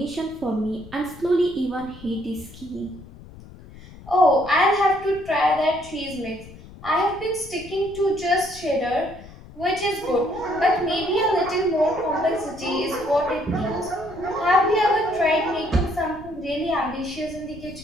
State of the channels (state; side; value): noise; left; rumble, 18 dB below the sound